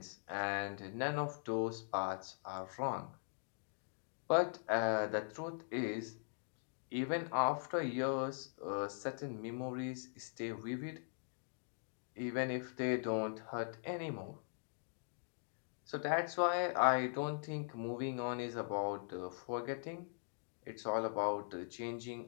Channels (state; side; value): silent; right; digital silence